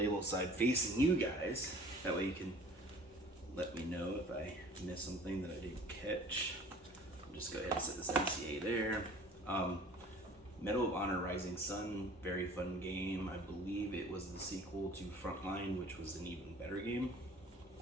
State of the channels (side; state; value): both; normal; correlation 0.48